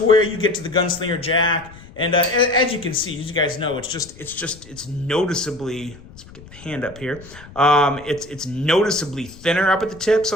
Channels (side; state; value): left; noise; rumble, 20 dB below the sound